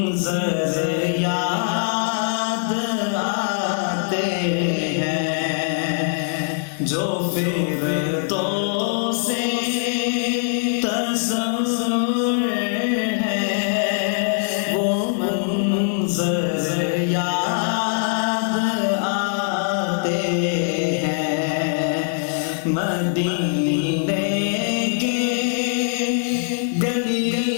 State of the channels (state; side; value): silent; right; 64 dB below the other